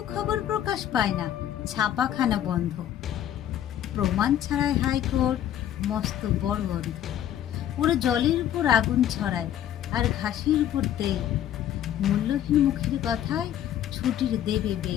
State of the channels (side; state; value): right; quieter; 11.1 dB